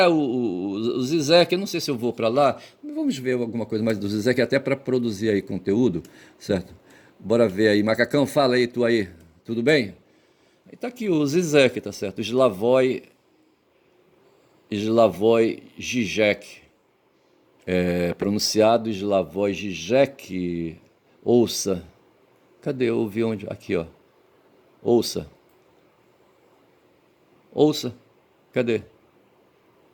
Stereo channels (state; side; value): identical; both; correlation 1.00